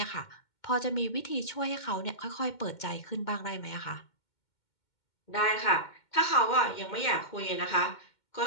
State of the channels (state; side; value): late; right; 2.2 ms